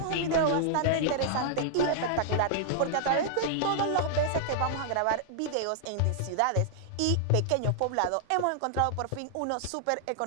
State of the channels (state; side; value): different; both; correlation -0.01